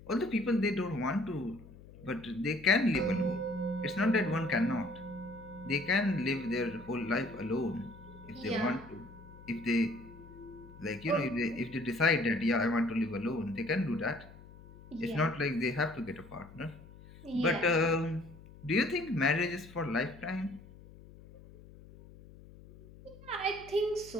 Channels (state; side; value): noise; left; hum, 19 dB below the sound